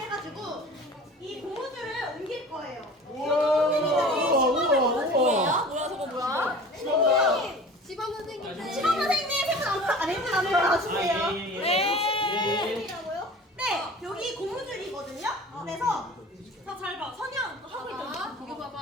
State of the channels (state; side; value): normal; both; correlation 0.41